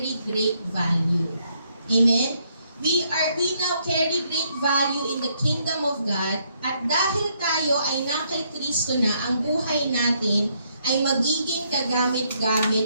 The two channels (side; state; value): both; inverted; correlation -0.72